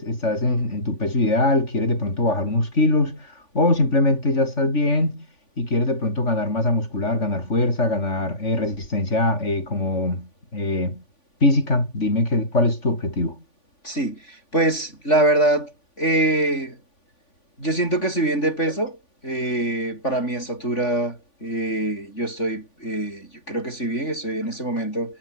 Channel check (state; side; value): late; right; 3.5 ms